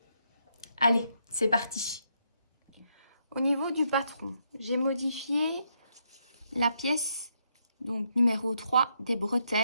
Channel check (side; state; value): both; inverted; correlation -0.77